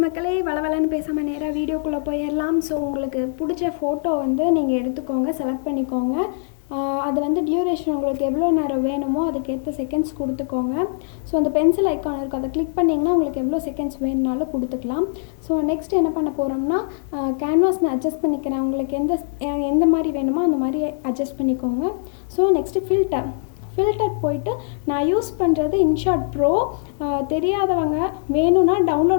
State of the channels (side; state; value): right; silent; digital silence